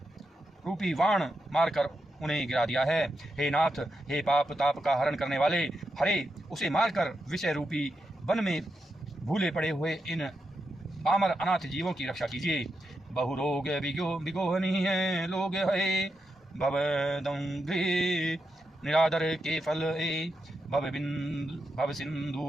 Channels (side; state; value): both; normal; correlation 0.86